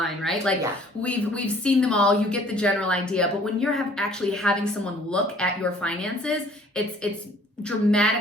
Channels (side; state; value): both; normal; correlation 0.55